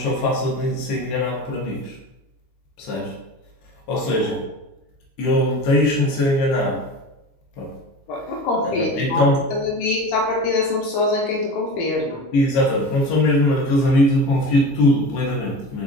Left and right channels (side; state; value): right; late; 15 ms